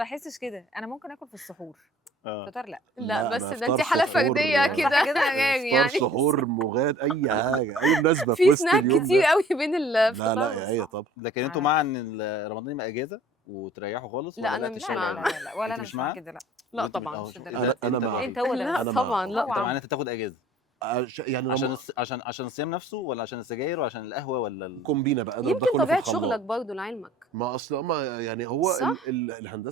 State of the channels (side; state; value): both; normal; correlation 0.52